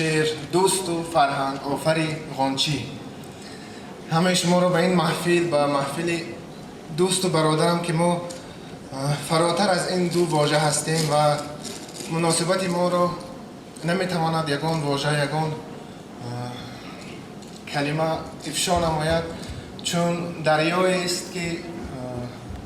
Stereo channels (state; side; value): identical; both; correlation 1.00